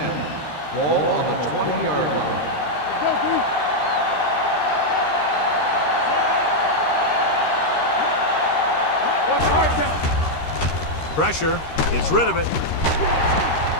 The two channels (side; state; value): right; late; 13 ms